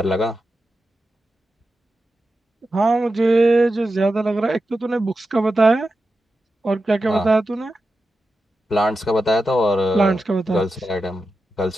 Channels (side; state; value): both; normal; correlation 0.91